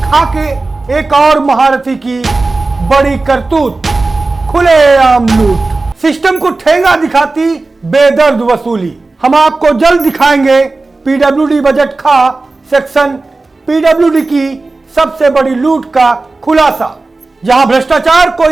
खा के एक और महारथी की बड़ी करतूत, खुलेआम लूट। सिस्टम को ठेंगा दिखाती बेदर्द वसूली। हम आपको जल्द दिखाएंगे पीडब्ल्यूडी बजट खा सेक्शन पीडब्ल्यूडी की सबसे बड़ी लूट का खुलासा, जहां भ्रष्टाचार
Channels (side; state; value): left; quieter; 3.4 dB